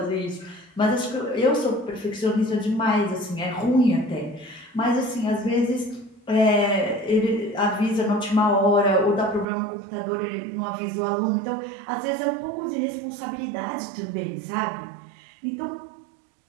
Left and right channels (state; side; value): drops out; left; at 9.5 s